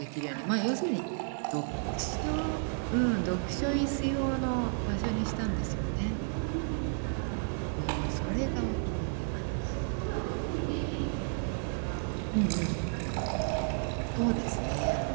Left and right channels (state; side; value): silent; left; 56 dB below the other